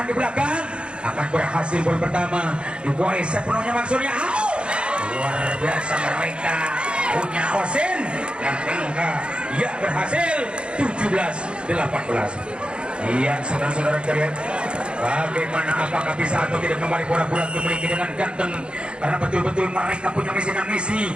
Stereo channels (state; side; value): late; left; 0.055 ms